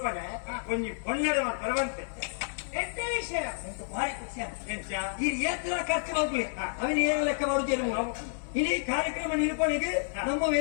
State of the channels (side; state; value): right; silent; 58 dB below the other